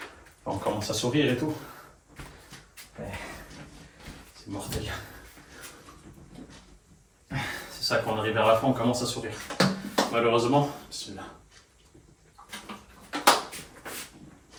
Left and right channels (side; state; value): both; identical; correlation 1.00